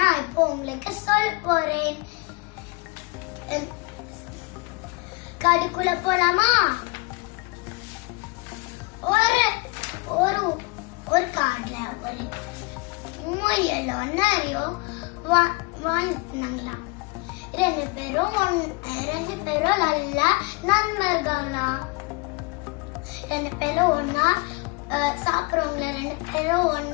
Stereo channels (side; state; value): right; quieter; 27.1 dB